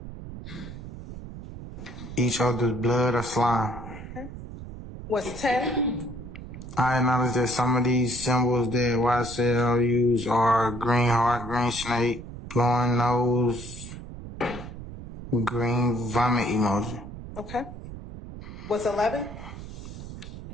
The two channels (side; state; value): right; noise; rumble, 11 dB below the sound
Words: other's blood or slime. What's 10? I acknowledge that some of these symbols that YSL use are green heart, green snake, blowing nose, green vomit emoji. Okay. What's 11?